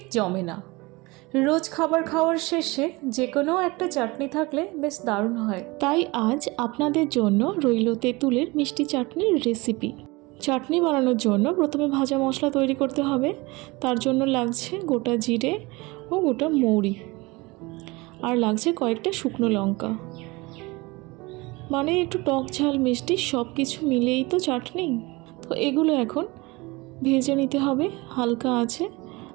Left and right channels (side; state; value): left; quieter; 23.7 dB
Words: জমে না। রোজ খাবার খাওয়ার শেষে যে কোনো একটা চাটনি থাকলে বেশ দারুণ হয়। তাই আজ আপনাদের জন্য রইল তেঁতুলের মিষ্টি চাটনির রেসিপি। চাটনি বানানোর জন্য প্রথমে ভাজা মশলা তৈরি করতে হবে। তার জন্য লাগছে গোটা জিরে ও গোটা মৌরি, আর লাগছে কয়েকটা শুকনো লঙ্কা। মানে একটু টক ঝাল মিষ্টি সব কিছু মিলেই তো চাটনি। তো এগুলো এখন ভেজে নিতে হবে হালকা আছে।